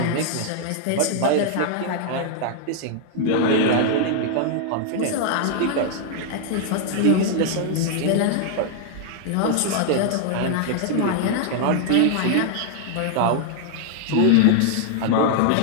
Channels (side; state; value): both; different; correlation 0.00